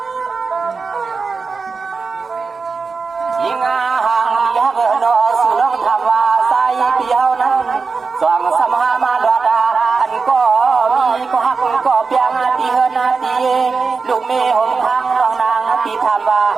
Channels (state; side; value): quieter; left; 4.7 dB